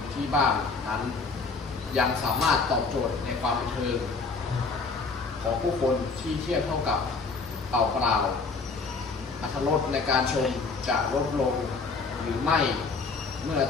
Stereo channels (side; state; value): right; quieter; 4.4 dB